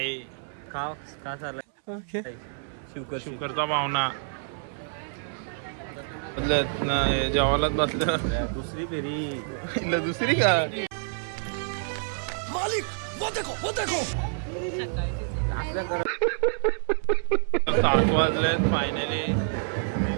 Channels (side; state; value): left; silent; 60 dB below the other